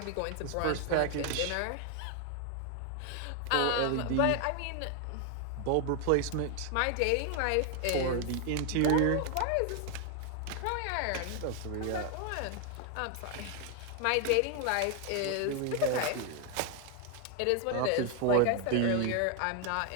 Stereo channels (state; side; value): different; both; correlation 0.00